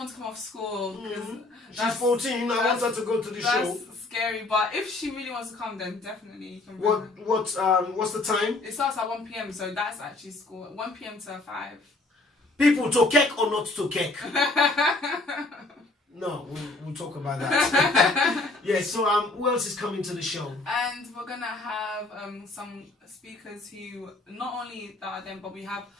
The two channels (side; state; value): right; quieter; 3.0 dB